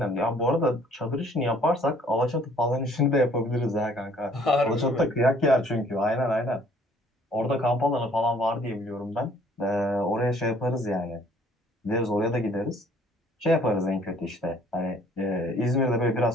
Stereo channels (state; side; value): normal; both; correlation 0.58